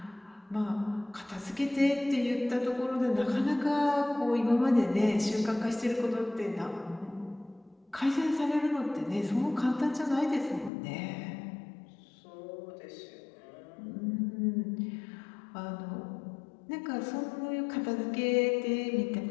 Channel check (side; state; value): right; drops out; at 10.7 s